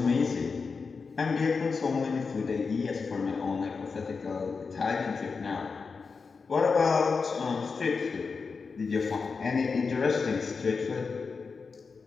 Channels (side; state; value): right; quieter; 4.9 dB